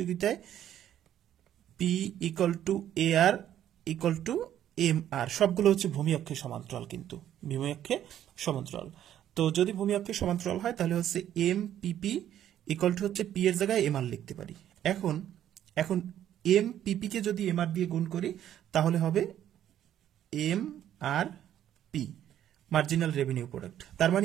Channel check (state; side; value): quieter; left; 11.1 dB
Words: P equal to AR equal to MR, সবগুলো হচ্ছে ভূমি অক্ষের সমান্তরাল, কিন্তু ভূমি অক্ষে সমান্তরাল। তো যদি ভূমি অক্ষের সমান্তরাল হয় তাহলে হচ্ছে এমপিপি ইকুয়াল টু হচ্ছে পি এর জায়গায় এমআর লিখতে পারি। এখন এমপিপি কে যদি এমআর দিয়ে গুণ করি তাহলে হবে এমআরপি, মার্জিনাল রেভিনিউ প্রোডাক্ট। তার